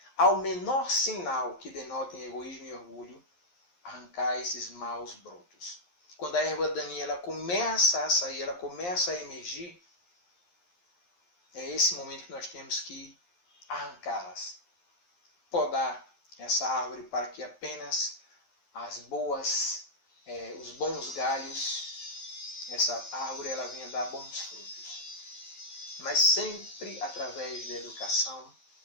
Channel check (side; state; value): right; late; 11 ms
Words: Ao menor sinal que denotem egoísmo e orgulho, arrancar esses maus brotos. Quando a erva daninha ela começa a sair, ela começa a emergir, é esse momento que nós temos que arrancá-las. Podar essa árvore para que apenas as boas, os bons galhos, essa árvore ela venha dar bons frutos. Mas sempre através da educação